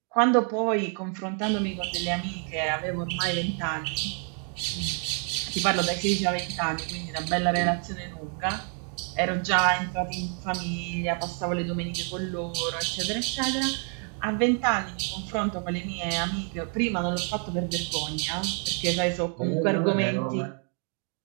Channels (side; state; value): left; quieter; 38.9 dB